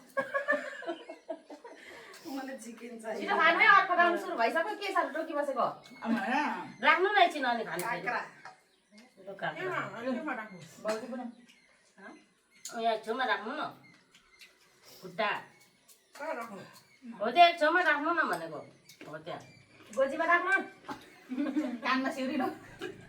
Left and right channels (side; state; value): both; identical; correlation 1.00